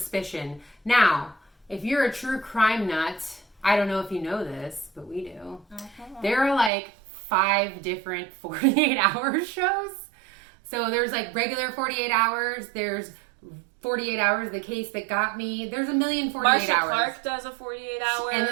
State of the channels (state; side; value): drops out; left; at 6.7 s